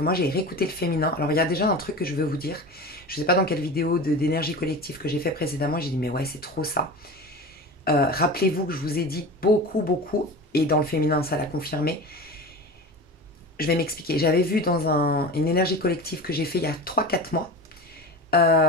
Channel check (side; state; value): both; normal; correlation 0.31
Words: moi j'ai réécouté le féminin. Alors il y a déjà un truc que je veux vous dire. Je ne sais pas dans quelle vidéo d'énergie collective que j'ai fait précédemment, j'ai dit mais ouais c'est trop ça. Rappelez-vous que je vous ai dit beaucoup, et dans le féminin ça l'a confirmé. Je vais m'expliquer. J'avais vu dans une énergie collective que j'ai fait il y a 3-4 mois,